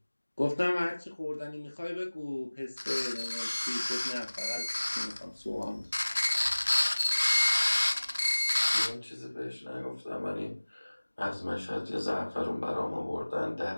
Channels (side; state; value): both; inverted; correlation -1.00